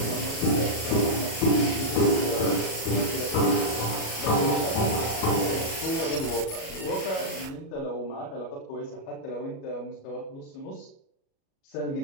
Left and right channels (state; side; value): late; right; 37 ms